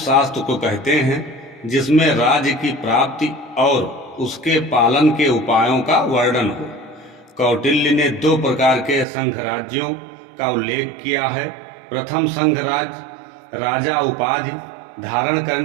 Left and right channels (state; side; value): drops out; left; at 9.1 s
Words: शास्त्र को कहते हैं जिसमें राज्य की प्राप्ति और उसके पालन के उपायों का वर्णन हो। कौटिल्य ने 2 प्रकार के संघ राज्यों का उल्लेख किया है। प्रथम संघ राज्य राजा उपाधि धारण